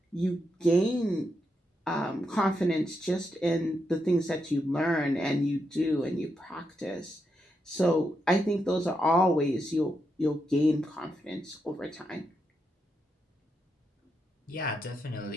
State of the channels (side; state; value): both; normal; correlation 0.83